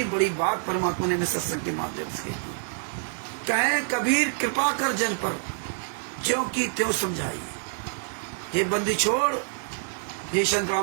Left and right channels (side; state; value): left; silent; digital silence